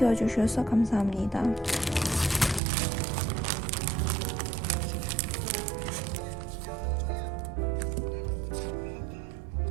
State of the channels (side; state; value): left; drops out; at 2.6 s